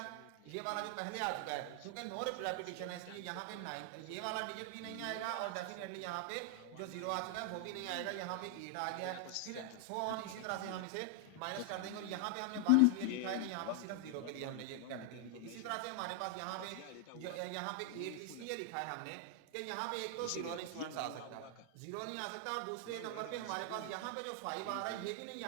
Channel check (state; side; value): different; both; correlation 0.00